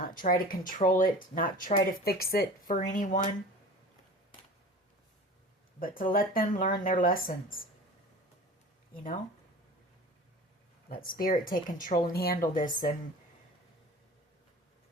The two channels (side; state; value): both; normal; correlation 0.39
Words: try to control it. Not try to fix it for anyone. But to let them learn their lessons. You know? Let Spirit take control and handle this. And